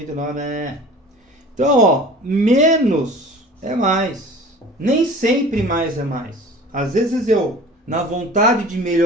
né? Então, ó, menos é mais. Nem sempre mais é mais. Às vezes eu, na vontade de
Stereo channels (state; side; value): normal; both; correlation 0.42